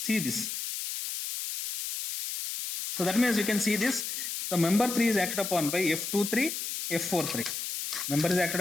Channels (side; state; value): left; noise; hiss, 4 dB below the sound